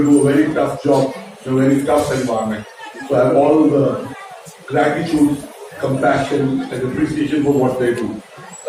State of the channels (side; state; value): both; identical; correlation 1.00